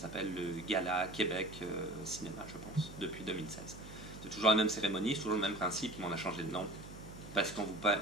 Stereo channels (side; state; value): right; noise; hum, 14 dB below the sound